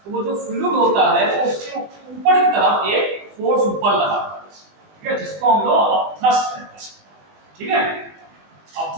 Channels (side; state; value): left; late; 20 ms